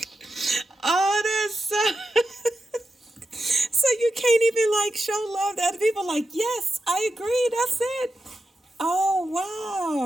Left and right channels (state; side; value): normal; both; correlation 0.88